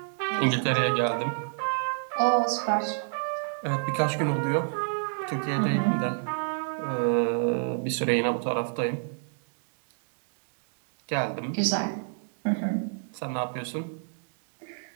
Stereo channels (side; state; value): left; silent; digital silence